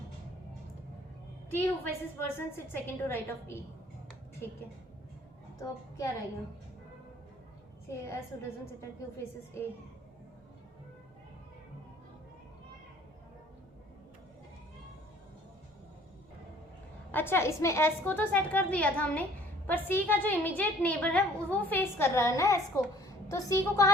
T who faces person sit second to right of E, ठीक है। तो अब क्या रहेगा, से S who doesn't sit at Q faces A, अच्छा इसमें एस को तो सेट कर दिया था हमने, पर सी का जो इमीडिएट नेबर है वो फेस कर रहा है ना एस को, तो सी को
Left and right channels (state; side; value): normal; both; correlation 0.56